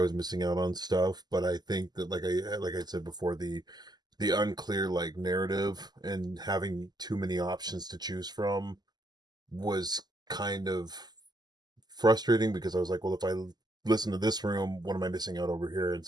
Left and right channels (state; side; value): late; left; 0.20 ms